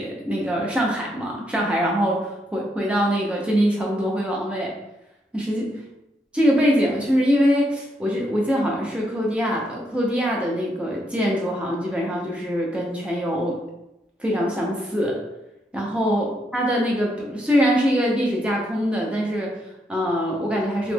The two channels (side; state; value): both; normal; correlation 0.77